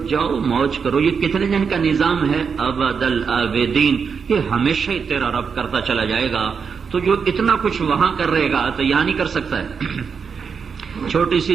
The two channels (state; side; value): quieter; left; 6.0 dB